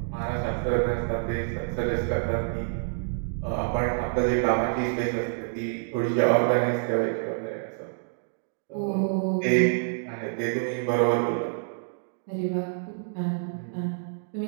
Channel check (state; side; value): silent; left; digital silence